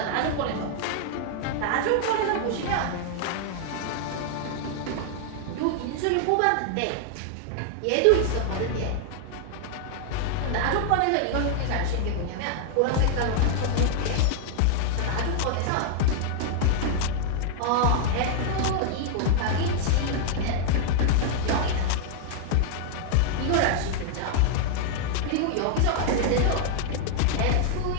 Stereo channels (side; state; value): both; different; correlation 0.00